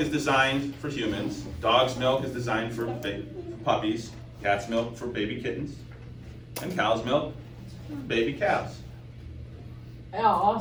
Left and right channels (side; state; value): both; identical; correlation 1.00